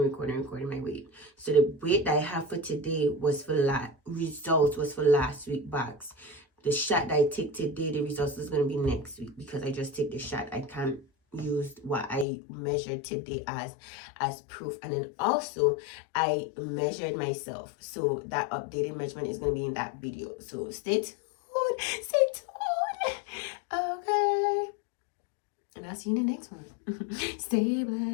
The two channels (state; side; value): drops out; right; at 12.2 s